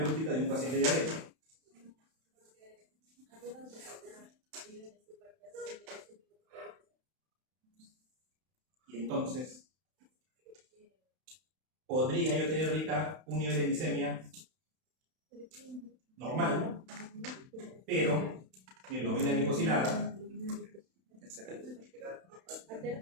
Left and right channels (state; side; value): late; left; 31 ms